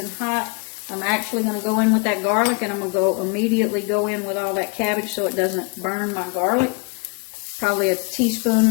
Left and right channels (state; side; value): quieter; right; 32.8 dB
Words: hot. I'm actually going to go in with that garlic, and I'm going to immediately go in with all that cabbage so it doesn't burn my garlic. Probably a